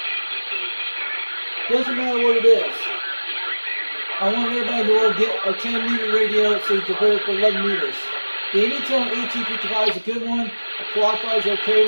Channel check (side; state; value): both; inverted; correlation -1.00